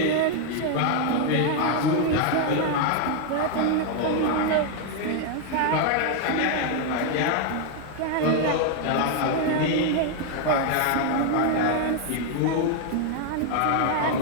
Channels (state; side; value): different; both; correlation 0.00